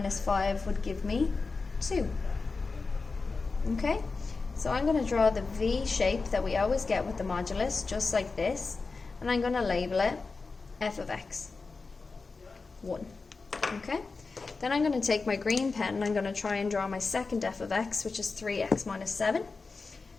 5 would give me 2. Okay? So I'm going to draw the V shape that we always get with the modulus, just like this, and I'm going to label it f of x, 1. Okay? Then I'm going to take my green pen and I'm going to try and draw my second f of x, which is 3x minus 7.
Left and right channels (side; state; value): right; quieter; 4.2 dB